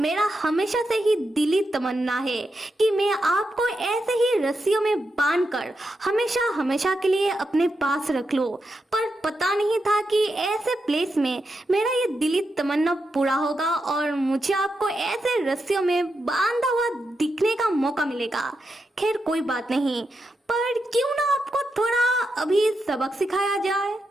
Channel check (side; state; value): both; normal; correlation 0.85